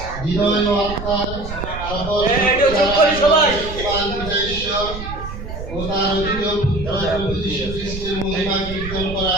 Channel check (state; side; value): noise; right; rumble, 9 dB below the sound